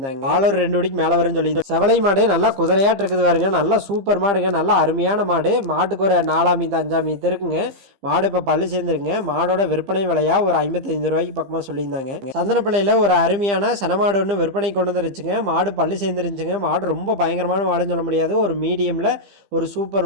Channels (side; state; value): left; late; 15 ms